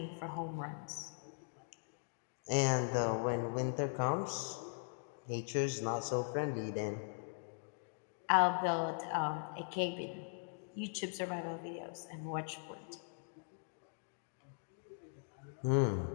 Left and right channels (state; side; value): silent; right; digital silence